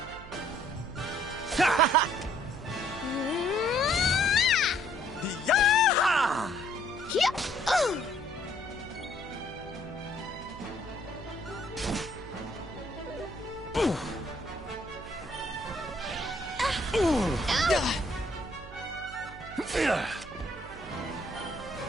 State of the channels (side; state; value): right; noise; hum, 16 dB below the sound